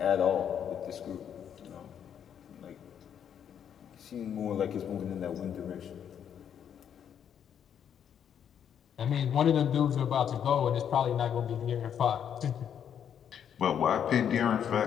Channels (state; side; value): quieter; right; 8.7 dB